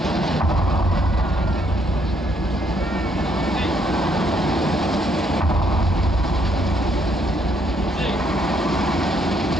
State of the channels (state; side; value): normal; both; correlation 0.71